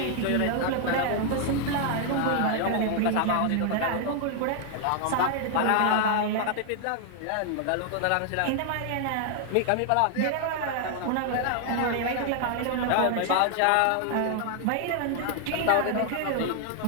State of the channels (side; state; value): both; different; correlation 0.00